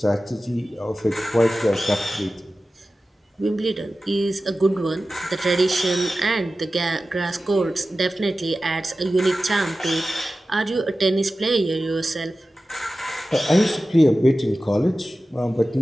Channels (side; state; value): both; normal; correlation 0.95